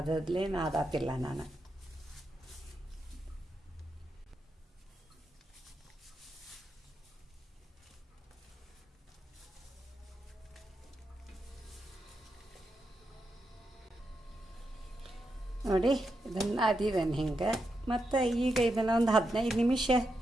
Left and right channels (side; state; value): both; normal; correlation 0.85